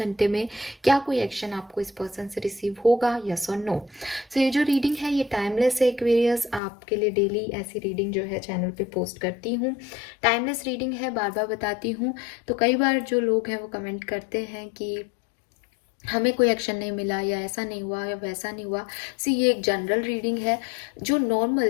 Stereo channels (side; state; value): right; drops out; at 6.6 s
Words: में क्या कोई एक्शन आपको इस पर्सन से रिसीव होगा, यस और नो। सो ये जो रीडिंग है ये टाइमलेस है एक्वेरियस, आपके लिए डेली ऐसी रीडिंग जो है चैनल पे पोस्ट करती हूँ। टाइमलेस रीडिंग है, बार बार बताती हूँ। तो कई बार जो लोग हैं वो कमेंट करते हैं कि हमें कोई एक्शन नहीं मिला या ऐसा नहीं हुआ या वैसा नहीं हुआ। सी ये एक जनरल रीडिंग है, जो नॉर्मल